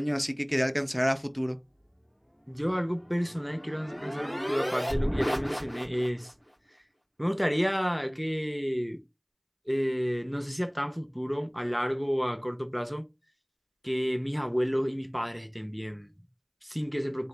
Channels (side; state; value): both; identical; correlation 1.00